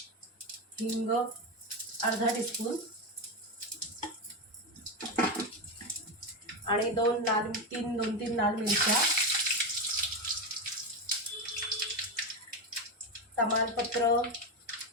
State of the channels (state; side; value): normal; both; correlation 0.13